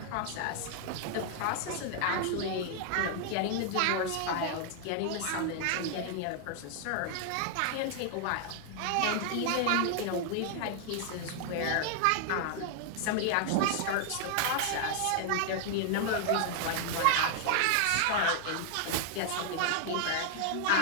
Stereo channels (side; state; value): both; different; correlation 0.00